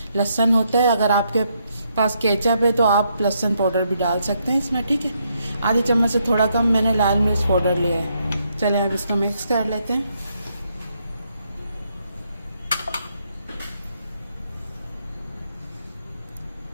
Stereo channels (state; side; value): inverted; both; correlation -0.76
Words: लहसुन होता है। अगर आपके पास केचप है तो आप लहसुन पाउडर भी डाल सकते हैं इसमें, ठीक है। आधी चम्मच से थोड़ा कम मैंने लाल मिर्च पाउडर लिया है। चलिए अब इसको मिक्स कर लेते हैं।